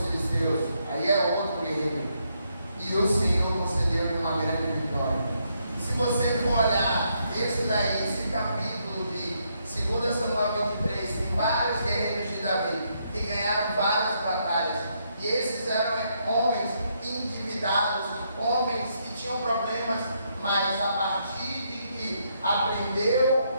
filisteus. Aí é outro guerreiro. E o Senhor concedeu-lhe uma grande vitória. Se você for olhar esse capítulo de 2 Samuel 23, tem vários guerreiros de Davi que ganharam várias batalhas. E esses eram homens endividados, homens que tinham problemas, mas a partir de que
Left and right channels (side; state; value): both; inverted; correlation -0.76